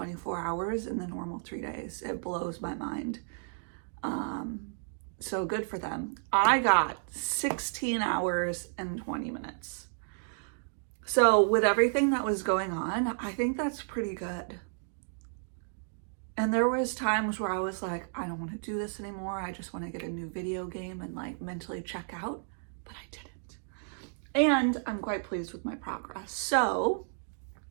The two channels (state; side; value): silent; left; digital silence